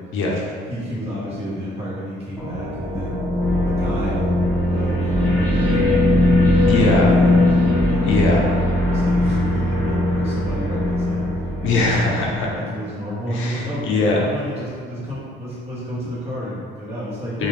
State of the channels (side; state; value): both; normal; correlation 0.69